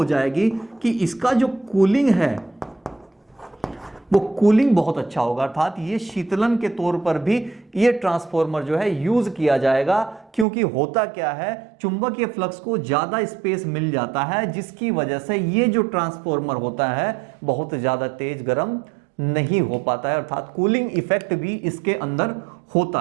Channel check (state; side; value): drops out; left; at 10.5 s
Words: जाएगी कि इसका जो कूलिंग है वो कूलिंग बहुत अच्छा होगा। अर्थात ये शीतलन के तौर पर भी ये ट्रांसफॉर्मर जो है यूज किया जाएगा, क्योंकि होता क्या है, चुंबकीय फ्लक्स को ज्यादा स्पेस मिल जाता है जिसकी वजह से ये जो ट्रांसफॉर्मर होता है बहुत ज्यादा तेज गर्म नहीं हो पाता है। अर्थात कूलिंग इफेक्ट भी इसके अंदर होता